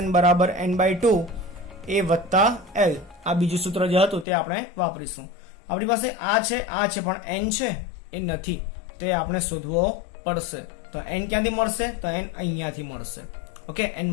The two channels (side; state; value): right; drops out; at 4.2 s